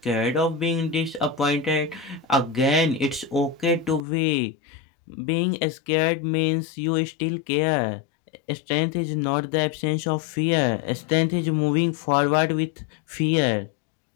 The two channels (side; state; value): right; drops out; at 4.0 s